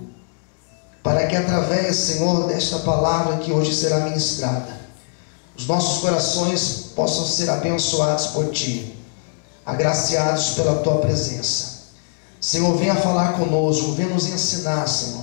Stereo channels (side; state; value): right; silent; digital silence